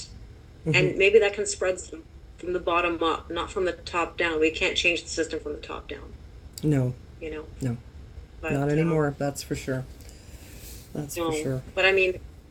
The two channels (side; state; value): both; identical; correlation 1.00